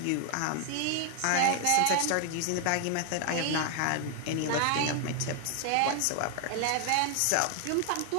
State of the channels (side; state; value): both; different; correlation 0.00